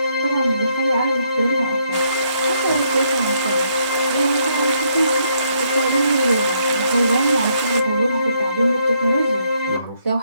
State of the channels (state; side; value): inverted; both; correlation -0.73